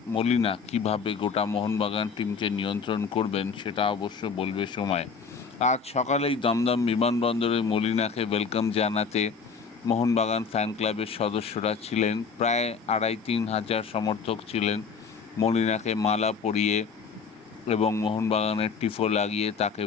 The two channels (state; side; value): quieter; right; 5.6 dB